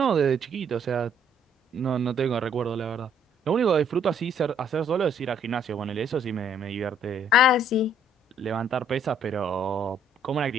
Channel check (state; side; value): normal; both; correlation 0.64